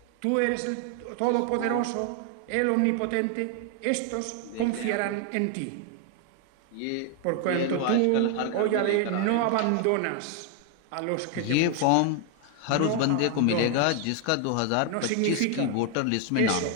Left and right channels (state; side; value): different; both; correlation 0.01